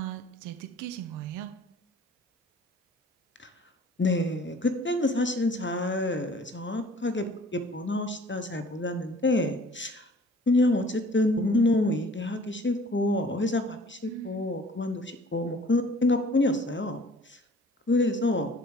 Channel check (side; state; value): both; normal; correlation 0.51